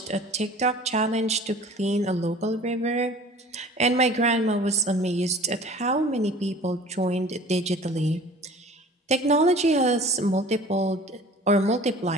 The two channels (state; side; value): normal; both; correlation 0.46